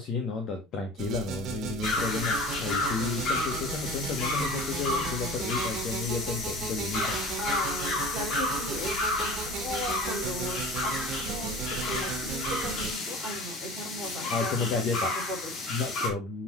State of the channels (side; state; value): both; normal; correlation 0.39